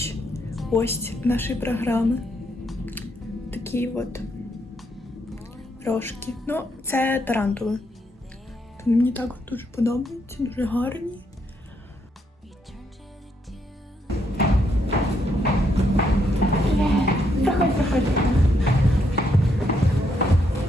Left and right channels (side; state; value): both; normal; correlation 0.75